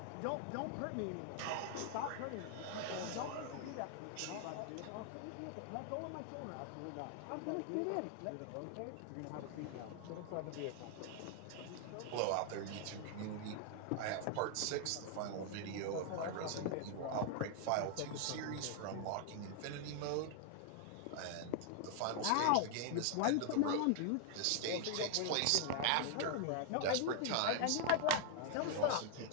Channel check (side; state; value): both; different; correlation 0.00